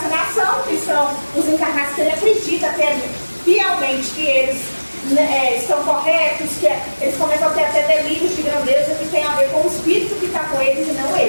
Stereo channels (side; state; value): both; inverted; correlation -1.00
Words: que são os encarnados que ele acredita fielmente que eles estão corretos, que eles começam a ter até delírios de grandeza que tem a ver com o espírito que está com eles e não